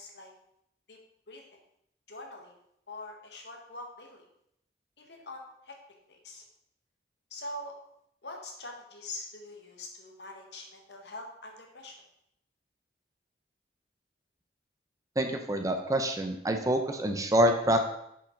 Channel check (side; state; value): both; normal; correlation 0.41